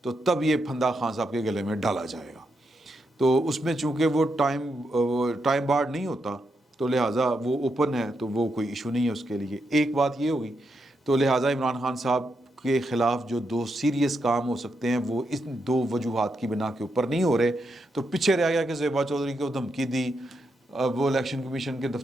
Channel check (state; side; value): normal; both; correlation 0.82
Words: تو تب یہ پھندا خان صاحب کے گلے میں ڈالا جائے گا. تو اس میں چونکہ وہ ٹائم بارڈ نہیں ہوتا تو لہٰذا وہ اوپن ہے، تو وہ کوئی ایشو نہیں ہے اس کے لیے. ایک بات یہ ہوگی. تو لہٰذا عمران خان صاحب کے خلاف جو دو سیریس کام ہو سکتے ہیں وہ اس دو وجوہات کی بنا کے اوپر نہیں ہو رہے. تو پیچھے رہ گیا کہ زیبا چودھری کو دھمکی دی وہ الیکشن کمیشن کے